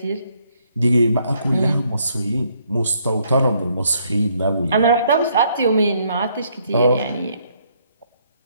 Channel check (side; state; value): both; inverted; correlation -0.70